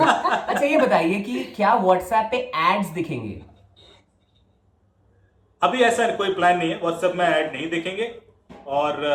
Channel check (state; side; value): identical; both; correlation 1.00